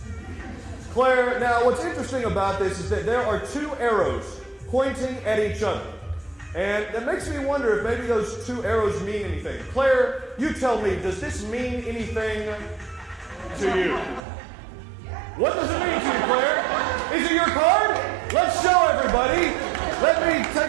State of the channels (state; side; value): drops out; left; at 14.2 s